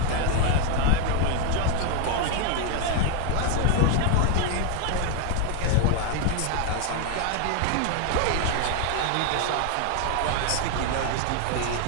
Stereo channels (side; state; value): both; different; correlation 0.01